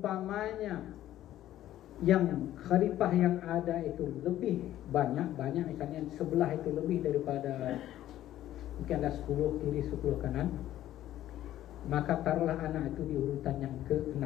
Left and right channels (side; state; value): right; quieter; 13.1 dB